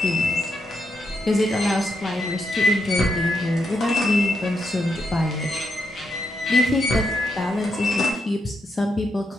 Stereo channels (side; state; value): both; normal; correlation 0.82